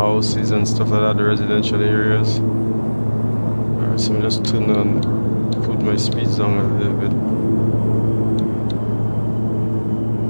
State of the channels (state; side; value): inverted; both; correlation -1.00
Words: and stuff like that, the residential areas. Alright, so I'm just put my speeds down a little bit.